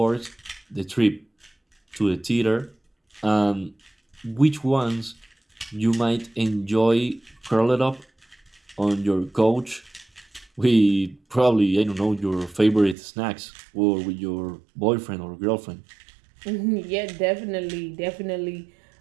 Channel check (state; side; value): drops out; left; at 13.0 s